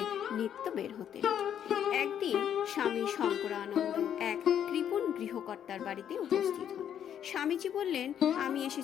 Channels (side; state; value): right; quieter; 9.4 dB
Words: নিত্য বের হতেন। একদিন স্বামী শঙ্করানন্দ এক কৃপণ গৃহকর্তার বাড়িতে উপস্থিত হন। স্বামীজি বললেন, আমি